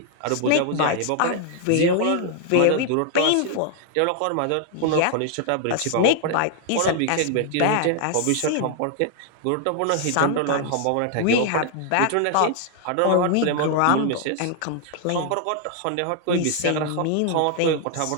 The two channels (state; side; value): different; both; correlation 0.00